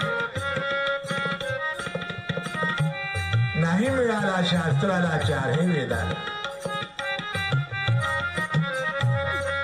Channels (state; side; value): identical; both; correlation 1.00